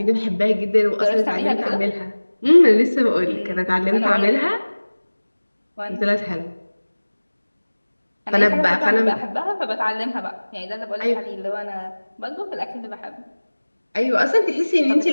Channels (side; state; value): both; inverted; correlation -1.00